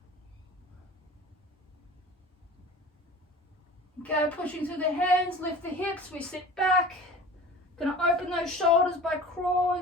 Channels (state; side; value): normal; both; correlation 0.39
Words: Okay, pushing through the hands, lift the hips, we sit back. Gonna open those shoulders by